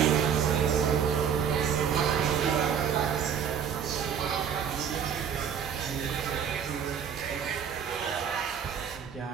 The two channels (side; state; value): left; quieter; 7.7 dB